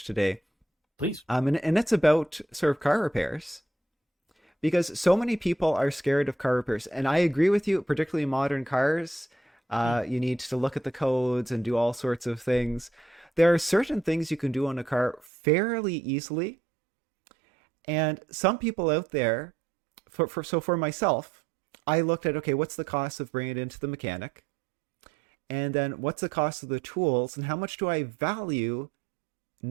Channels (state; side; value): drops out; left; at 15.3 s